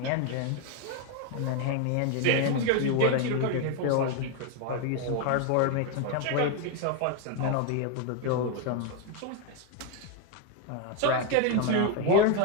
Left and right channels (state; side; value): different; both; correlation 0.02